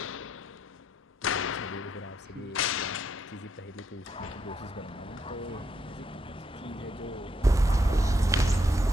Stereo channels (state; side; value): normal; both; correlation 0.77